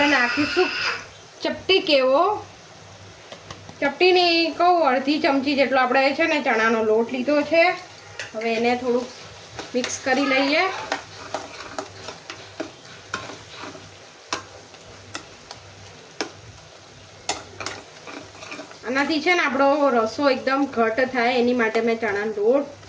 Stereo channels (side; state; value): both; identical; correlation 1.00